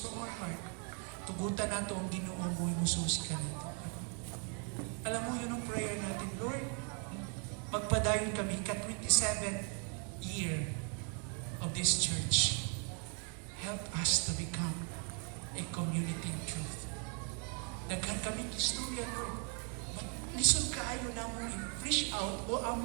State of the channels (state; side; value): quieter; left; 39.1 dB